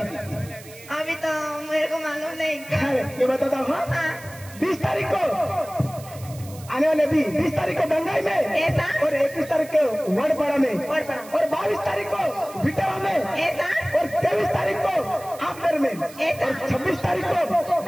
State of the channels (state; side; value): noise; right; hiss, 19 dB below the sound